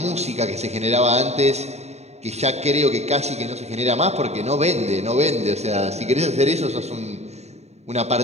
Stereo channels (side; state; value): left; late; 0.32 ms